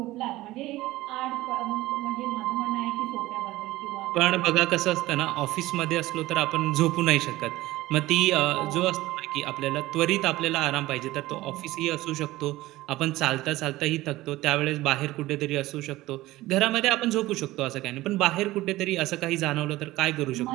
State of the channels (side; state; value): left; quieter; 17.5 dB